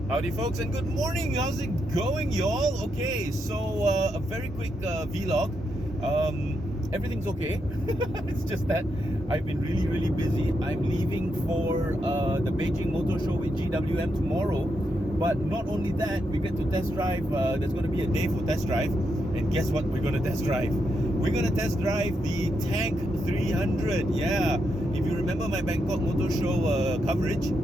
Howdy folks and good morning. How's it going, y'all? Okay, so a very quick vlog. Everything's okay. It's just that I've been really busy. I'm leaving for the Beijing Motor Show with GWM tomorrow. But not only that, we get to test drive. There's going to be a day for test drive. And guess what we're going to test drive? We're going to test drive the Tank 300. Yeah, if you remember my Bangkok Motor Show coverage,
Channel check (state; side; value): normal; both; correlation 0.82